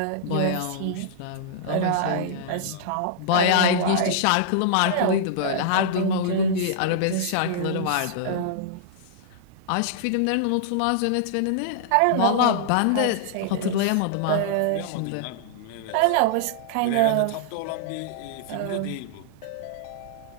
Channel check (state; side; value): different; both; correlation -0.01